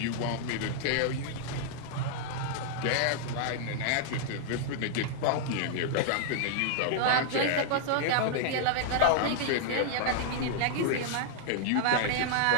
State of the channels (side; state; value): both; different; correlation -0.01